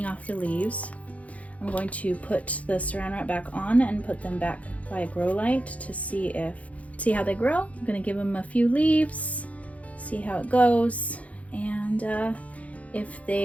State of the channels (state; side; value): late; right; 0.067 ms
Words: off the leaves. I'm going to put the saran wrap back on and put them back by a grow light to see how they grow. I'm gonna give them a few leaves, see how it goes, and if